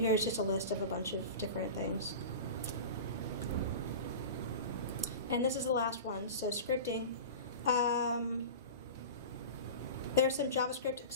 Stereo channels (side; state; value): both; inverted; correlation -0.32